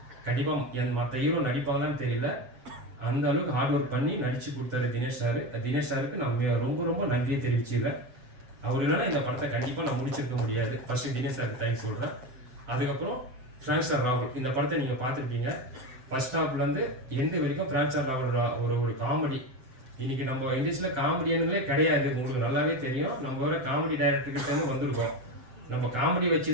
கண்டிப்பாக மற்ற ஹீரோ நடிப்பாங்களான்னு தெரியல, அந்த அளவுக்கு ஹார்ட் ஒர்க் பண்ணி நடிச்சு கொடுத்தாரு தினேஷ் சார். தினேஷ் சாருக்கு நான் ரொம்ப ரொம்ப நன்றியை தெரிவிச்சுக்கிறேன். அவர் இல்லைன்னா இந்த படத்தை கண்டிப்பாக நான் முடிச்சிருக்க முடியாது. ஃபர்ஸ்ட் தினேஷ் சாருக்கு தேங்க்ஸ் சொல்கிறேன். அதுக்கப்புறம் பிராங்க் ஸ்டார் ராகுல், இந்த படத்தை நீங்கள் பார்த்துருப்பீங்க. ஃபர்ஸ்ட் ஹாஃப்லேருந்து எண்டு வரைக்கும் பிராங்க் ஸ்டார் ராகுல் ஒரு காமெடி. இன்னைக்கு நம்ம இண்டஸ்ட்ரியில் காமெடியானே கிடையாது, உங்களுக்கு நல்லாவே தெரியும். நம்ம வர காமெடி டைரக்டர்கிட்ட வந்திருக்கோம். நம்ம காமெடி வச்சு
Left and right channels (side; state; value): left; late; 7.7 ms